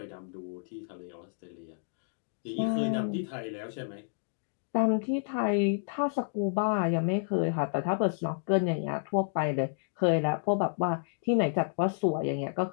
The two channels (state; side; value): silent; right; digital silence